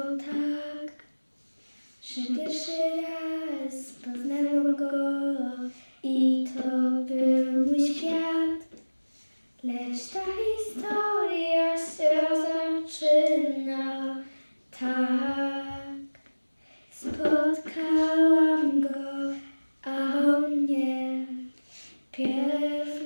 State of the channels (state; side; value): inverted; both; correlation -1.00